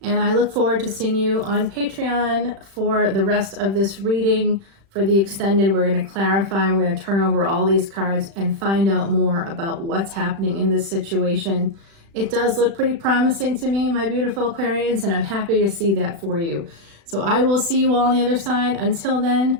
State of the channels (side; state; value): left; late; 36 ms